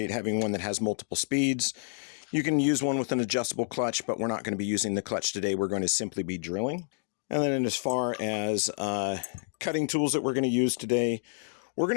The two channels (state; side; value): silent; right; digital silence